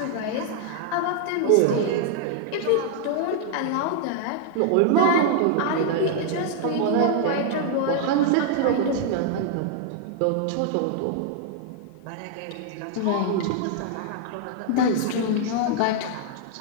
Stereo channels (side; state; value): both; different; correlation 0.00